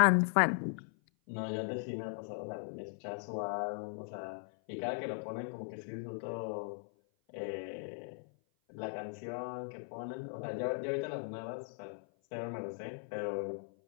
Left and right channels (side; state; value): right; silent; 52 dB below the other